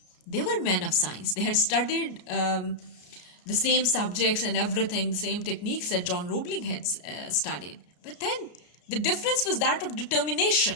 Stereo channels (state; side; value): late; right; 34 ms